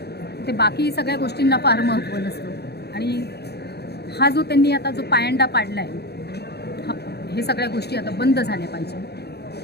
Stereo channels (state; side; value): late; right; 0.48 ms